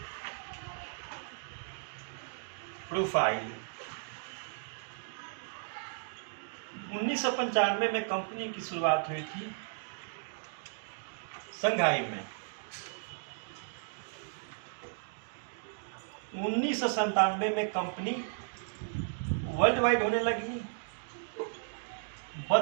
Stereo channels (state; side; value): silent; left; digital silence